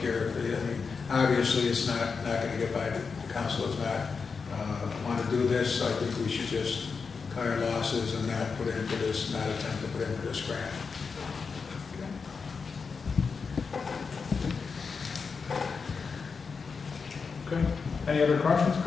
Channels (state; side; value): quieter; right; 5.2 dB